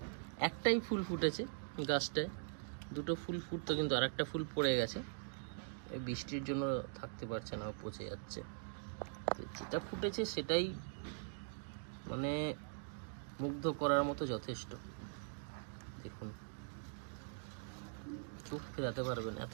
একটাই ফুল ফুটেছে গাছটায়, দুটো ফুল ফুটতো কিন্তু আর একটা ফুল পড়ে গেছে, এই বৃষ্টির জন্য থাকতে পারছে না, পচে যাচ্ছে। যেটা ফুটেছে সেটাই মানে মুগ্ধ করার মতো যথেষ্ট। দেখুন চোখ ফেরাতে পারবেন, এত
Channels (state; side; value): silent; left; digital silence